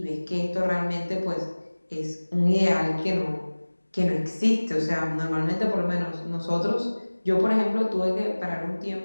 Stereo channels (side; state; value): both; inverted; correlation -1.00